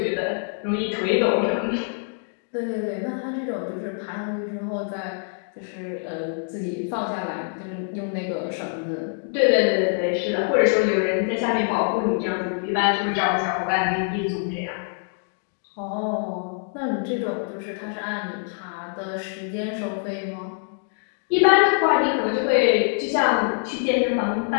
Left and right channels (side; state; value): right; silent; 62 dB below the other